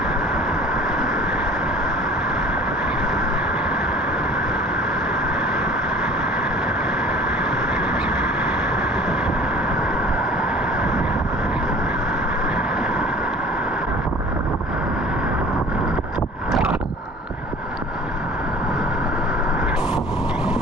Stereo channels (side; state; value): both; normal; correlation 0.45